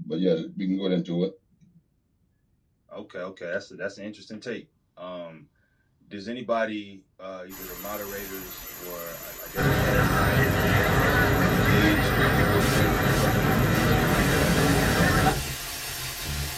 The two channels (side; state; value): both; identical; correlation 1.00